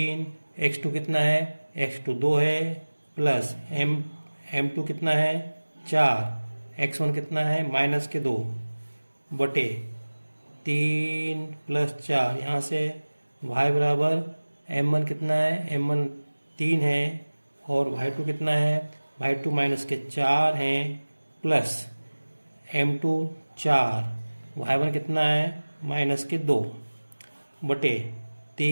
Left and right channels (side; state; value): both; inverted; correlation -1.00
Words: x2 कितना है? x2 2 है, प्लस m2 कितना है? 4। x1 कितना है? -2 बटे 3 + 4। यहाँ से y बराबर M1 कितना है, M1 3 है, और Y2 कितना है, Y2 माइनस के 4 हैं, प्लस M2 4, Y1 कितना है, माइनस के 2 बटे